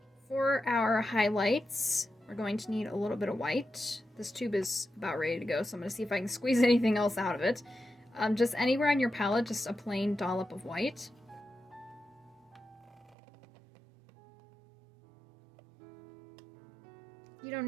for our highlights, we're going to need a little bit of white. This tube is about ready to go, so I'm going to see if I can squeeze anything else out of it. Just anywhere on your palette, just a plain dollop of white. You don't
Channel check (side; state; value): left; drops out; at 13.2 s